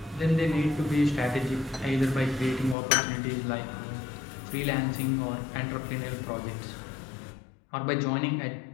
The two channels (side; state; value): right; drops out; at 2.8 s